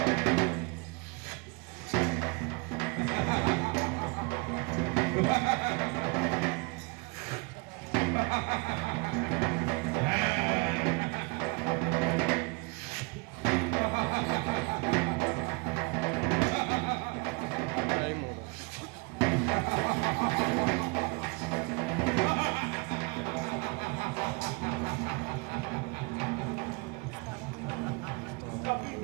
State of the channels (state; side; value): quieter; left; 28.4 dB